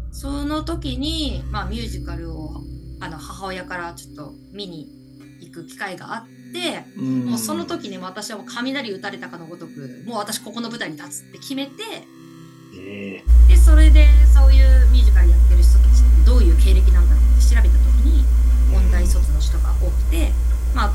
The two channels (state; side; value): identical; both; correlation 1.00